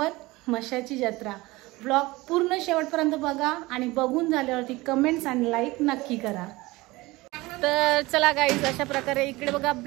म्हसाची जत्रा। व्लॉग पूर्ण शेवटपर्यंत बघा आणि बघून झाल्यावरती कमेंट्स आणि लाईक नक्की करा। तर चला गाईज, अशा प्रकारे इकडे बघा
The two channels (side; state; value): left; quieter; 21.0 dB